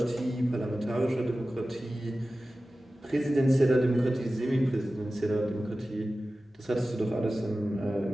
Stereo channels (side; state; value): both; normal; correlation 0.95